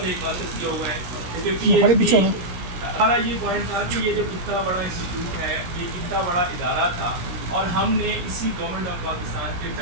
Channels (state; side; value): late; left; 17 ms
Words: 1 ماسٹر کیا ہوا ہے، کیونکہ پی ایچ ڈی. ہمارا یہ پوائنٹ تھا کہ یہ جب اتنا بڑا انسٹیٹیوٹ ہے، یہ اتنا بڑا ادارہ تھا، اور ہم نے اسی گورنمنٹ آف پاکستان کے